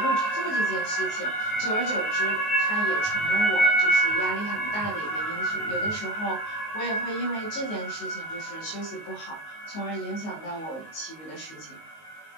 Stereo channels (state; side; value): late; right; 19 ms